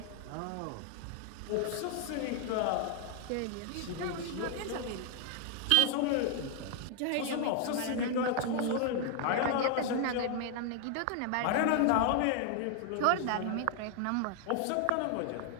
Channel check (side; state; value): both; different; correlation 0.00